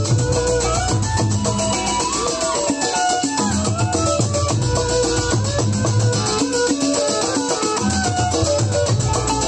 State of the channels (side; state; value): both; identical; correlation 1.00